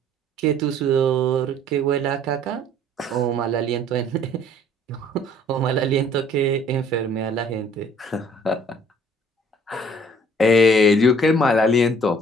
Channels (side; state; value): both; normal; correlation 0.57